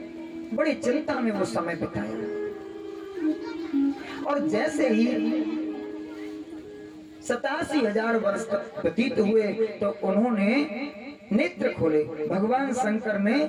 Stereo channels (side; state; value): both; identical; correlation 1.00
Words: बड़ी चिंता में वो समय बिताया। और जैसे ही 87,000 वर्ष तक व्यतीत हुए तो उन्होंने नेत्र खोले। भगवान शंकर ने